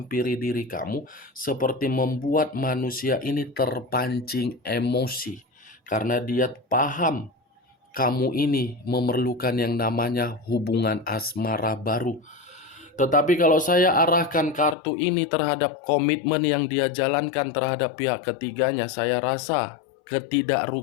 diri kamu, seperti membuat manusia ini terpancing emosi, karena dia paham kamu ini memerlukan yang namanya hubungan asmara baru. Tetapi kalau saya arahkan kartu ini terhadap komitmen yang dia jalankan terhadap pihak ketiganya, saya rasa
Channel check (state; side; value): drops out; right; at 14.8 s